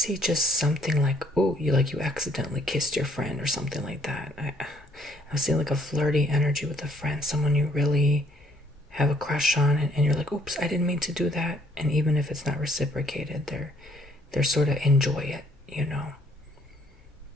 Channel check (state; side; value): normal; both; correlation 0.65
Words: just something like, you accidentally kissed your friend or something like that. I see like a flirty energy with a friend, someone you really have a crush on, and you're like, oops, I didn't mean to do that. And even if it's not reciprocated, they're sort of enjoy it,